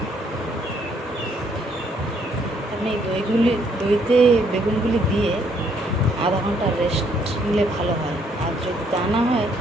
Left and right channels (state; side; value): normal; both; correlation 0.69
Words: আমি দইতে বেগুনগুলি দিয়ে আধা ঘন্টা রেস্ট নিলে ভালো হয়। যদি তা না হয়